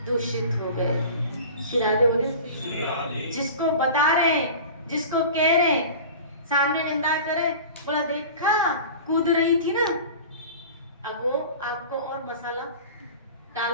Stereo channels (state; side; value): inverted; both; correlation -0.37